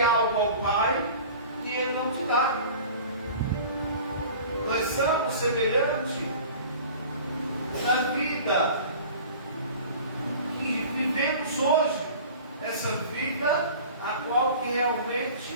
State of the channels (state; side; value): inverted; both; correlation -0.42